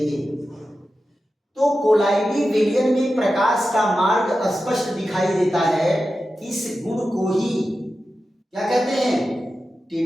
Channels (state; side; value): normal; both; correlation 0.92